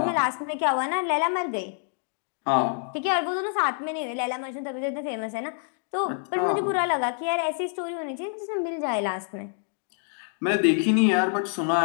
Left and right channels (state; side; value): silent; right; 60 dB below the other